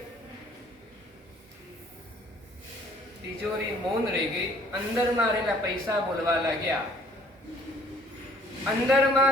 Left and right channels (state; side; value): normal; both; correlation 0.57